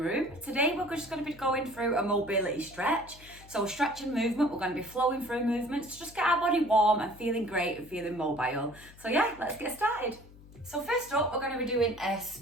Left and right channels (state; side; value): noise; left; hum, 21 dB below the sound